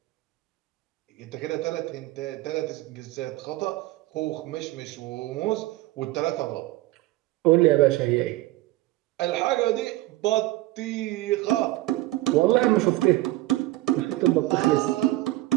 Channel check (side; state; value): left; quieter; 17.7 dB